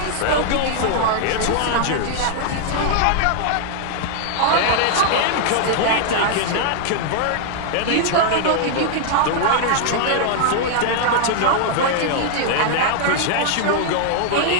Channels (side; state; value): both; different; correlation 0.00